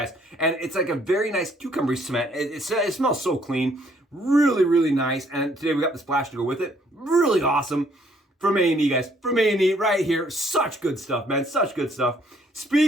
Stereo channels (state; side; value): normal; both; correlation 0.65